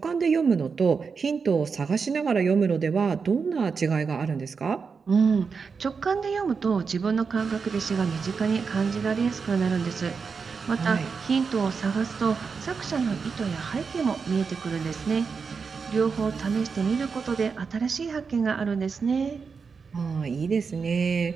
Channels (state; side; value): quieter; left; 5.4 dB